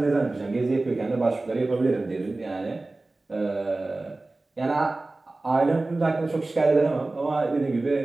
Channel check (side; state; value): left; quieter; 3.1 dB